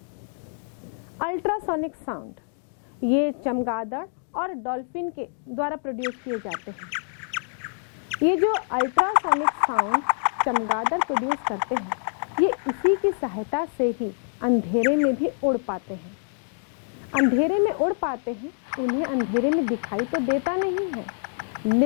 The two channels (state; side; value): silent; right; digital silence